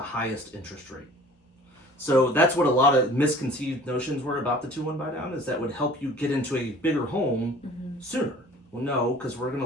highest interest rate. So that's what a lot of misconceived notions were about the 2-1 buy down, is that would help you get into a bigger home sooner. Well, no, because we're going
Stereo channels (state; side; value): normal; both; correlation 0.47